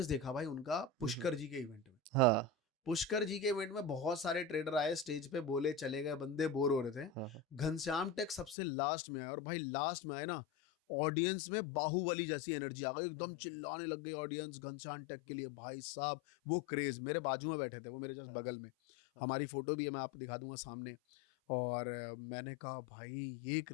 देखा भाई उनका हुँ, हुँ। पुष्कर जी के इवेंट में। हाँ, पुष्कर जी के इवेंट में बहुत सारे ट्रेडर आए, स्टेज पे बोले, चले गए, बंदे बोर हो रहे थे। हाँ, हाँ। घनश्याम टेक सबसे लास्ट में आया, और भाई लास्ट में आए ना, ऑडियंस में बाहुबली जैसी एनर्जी आ गई, हाँ, एकदम हाँ। चिल्लाने लग गई ऑडियंस घनश्याम टेक के हुँ, लिए। हुँ। भाई साहब वो क्रेज, मेरे हुँ, बाजू में हुँ। बैठे थे, वो मेरे जस्ट हाँ, हाँ। बगल में। हाँ, हाँ। हमारी फोटो भी है, मैं आपको दिखा दूंगा हुँ, सामने। हुँ। और मैंने कहा भाई ये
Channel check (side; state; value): right; drops out; at 8.6 s